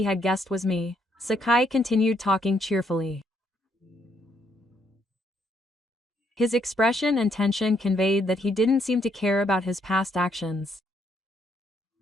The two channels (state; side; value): normal; both; correlation 0.72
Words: had guessed was me, Sakai continued talking cheerfully. His expression and tension conveyed that he didn't seem to care about his past actions.